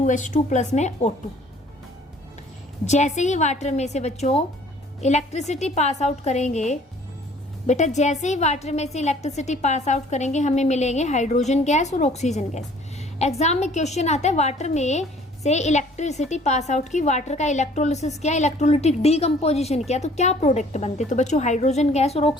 प्लस में O2। जैसे ही वाटर में से बच्चों इलेक्ट्रिसिटी पास आउट करेंगे, बेटा जैसे ही वाटर में से इलेक्ट्रिसिटी पास आउट करेंगे हमें मिलेंगे हाइड्रोजन गैस और ऑक्सीजन गैस। एग्जाम में क्वेश्चन आता है वाटर में से इलेक्ट्रिसिटी पास आउट की, वाटर का इलेक्ट्रोलिसिस किया, इलेक्ट्रोलिटिक डीकम्पोजिशन किया, तो क्या प्रोडक्ट बनते? तो बच्चों हाइड्रोजन गैस और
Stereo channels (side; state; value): both; normal; correlation 0.55